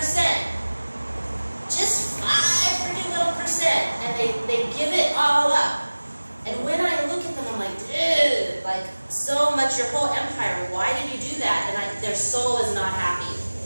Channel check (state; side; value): inverted; both; correlation -1.00